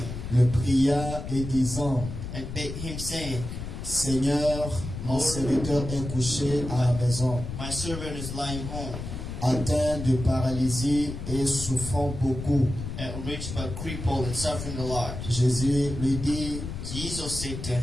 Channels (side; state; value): left; noise; rumble, 7 dB below the sound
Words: le pria et disant, and bade him, saying, Seigneur, mon serviteur est couché à la maison, My servant is lying home, atteint de paralysie et souffrant beaucoup. rich but crippled and suffering a lot. Jésus lui dit, Jesus said to